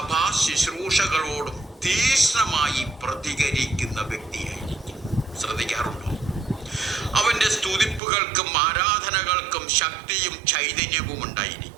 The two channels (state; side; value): drops out; left; at 8.0 s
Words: ശുശ്രൂഷകളോടും തീക്ഷ്ണമായി പ്രതികരിക്കുന്ന വ്യക്തിയായിരിക്കും. ശ്രദ്ധിക്കാറുണ്ടോ? അവന്റെ സ്തുതിപ്പുകൾക്കും ആരാധനകൾക്കും ശക്തിയും ചൈതന്യവും